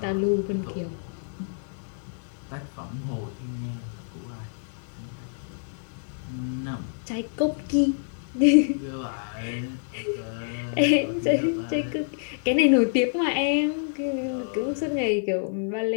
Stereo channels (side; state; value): right; silent; digital silence